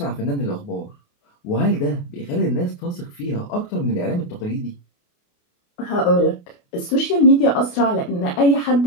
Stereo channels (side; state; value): right; late; 28 ms